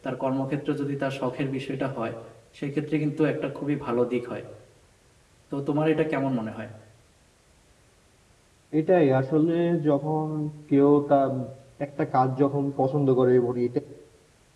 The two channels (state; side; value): identical; both; correlation 1.00